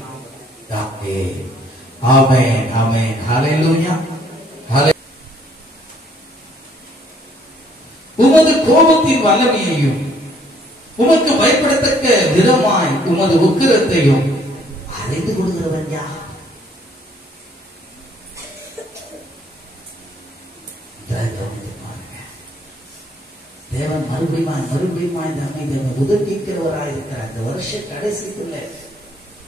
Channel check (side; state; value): both; normal; correlation 0.63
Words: நாமத்திலே. ஆமென், ஆமென். ஹல்லேலூயா. உமது கோபத்தின் வல்லமையையும் உமக்கு பயப்படத்தக்க விதமாய் உமது உக்கிரத்தையும் அறிந்து கொள்கிறவன் யார்? தேவன் மறுபடியும் நம்மை உதவிக்கிறவராயிருக்கிறார். இந்த வருஷ கடைசிக்குள்ள